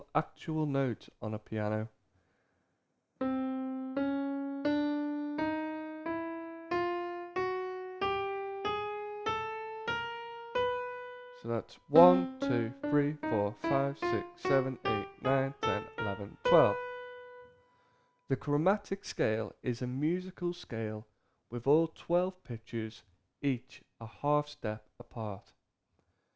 actual notes on a piano. So that's 1, 2, 3, 4, 5, 6, 7, 8, 9, 10, 11, 12. The chromatic scale is a musical scale with all 12 pitches, each a half step apart.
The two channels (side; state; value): both; identical; correlation 1.00